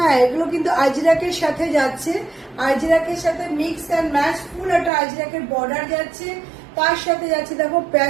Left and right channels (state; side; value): drops out; left; at 4.9 s